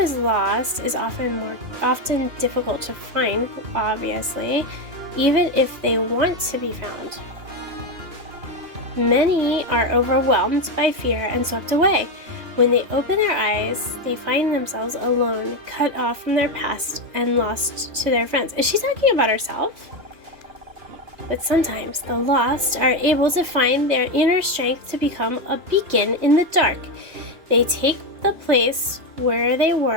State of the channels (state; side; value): late; left; 3.2 ms